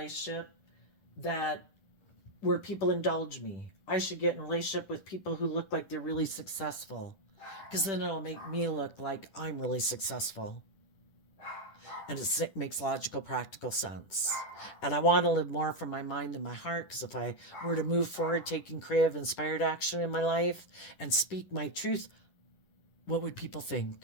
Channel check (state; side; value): late; right; 10 ms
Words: that where people indulge me. I should get in a relationship with people who look like they're really successful, because then it'll make me look like I'm really successful. And it makes logical, practical sense. And I want to live more from my mind than my heart, because if I were to move forward taking creative, inspired action in my life and speak my truth, what would people